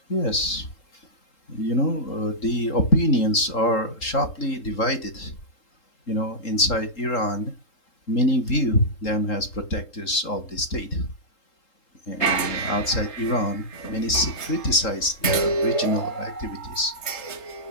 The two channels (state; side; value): late; right; 3.8 ms